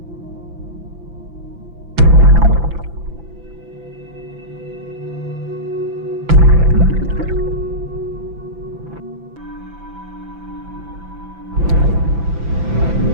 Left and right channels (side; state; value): left; late; 6.0 ms